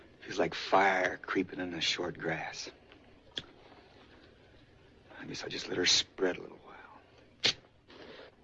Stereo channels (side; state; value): both; identical; correlation 1.00